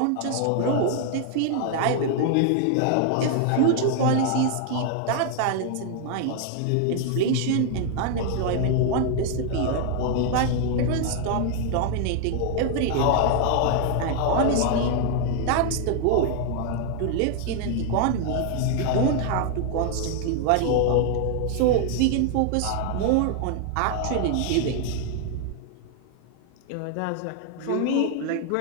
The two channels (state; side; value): different; both; correlation 0.00